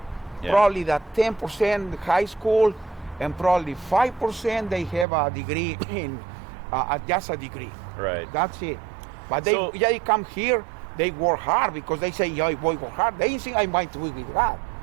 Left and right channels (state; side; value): drops out; left; at 5.1 s